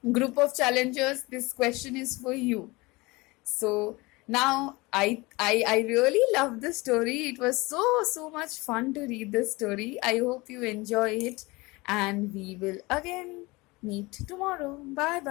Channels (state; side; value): quieter; right; 23.3 dB